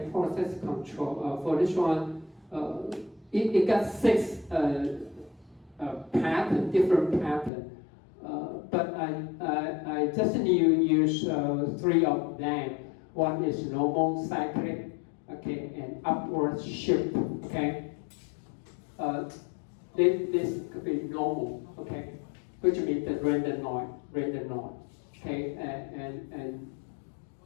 process control. For this one, it got 6 pattern, different pattern. But I just need to use 3 of them. One is normal cyclic, okay, and upward shift, okay. This could be normal, okay, which means the random noise, okay,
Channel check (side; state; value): right; drops out; at 7.5 s